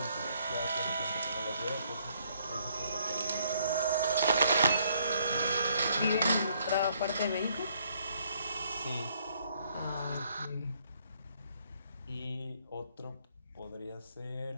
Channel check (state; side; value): inverted; both; correlation -0.68